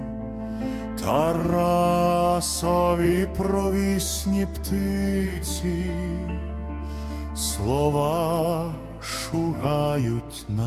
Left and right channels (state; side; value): identical; both; correlation 1.00